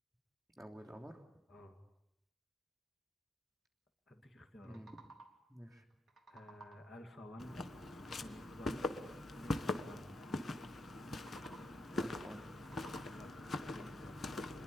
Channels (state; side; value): normal; both; correlation 0.80